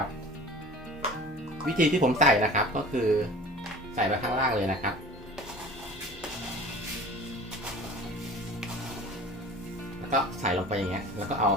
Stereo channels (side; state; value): both; normal; correlation 0.41